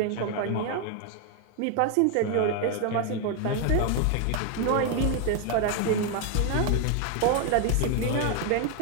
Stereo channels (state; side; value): different; both; correlation 0.01